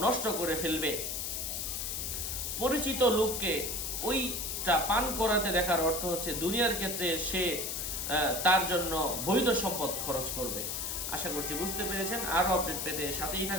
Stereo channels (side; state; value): left; noise; hiss, 3 dB below the sound